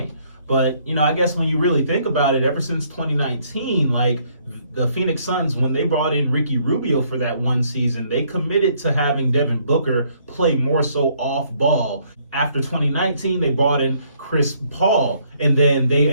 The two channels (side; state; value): both; inverted; correlation -0.66